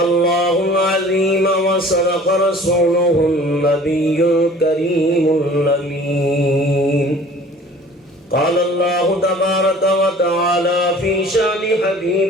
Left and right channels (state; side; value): normal; both; correlation 0.48